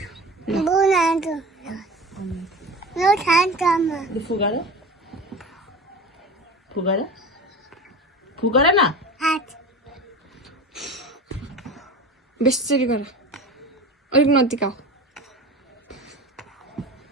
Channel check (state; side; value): normal; both; correlation 0.33